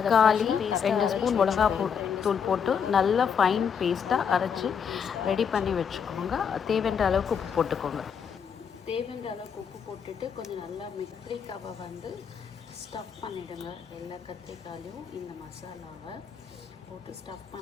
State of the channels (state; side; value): quieter; right; 7.1 dB